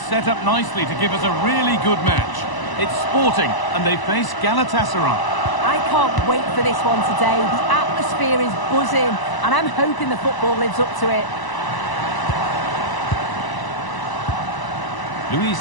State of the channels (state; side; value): late; right; 1.0 ms